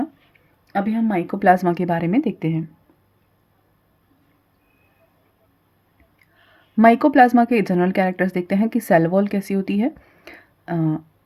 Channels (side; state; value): both; identical; correlation 1.00